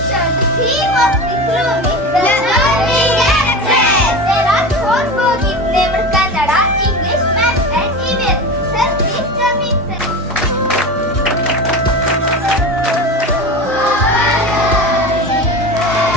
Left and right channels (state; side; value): normal; both; correlation 0.28